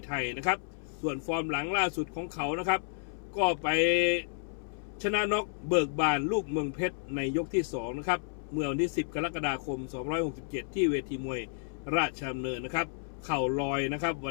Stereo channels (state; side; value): silent; right; 57 dB below the other